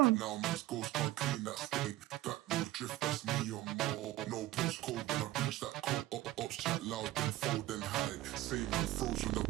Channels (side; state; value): left; quieter; 16.3 dB